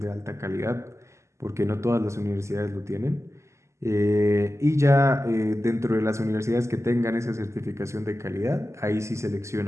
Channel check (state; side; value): late; left; 0.14 ms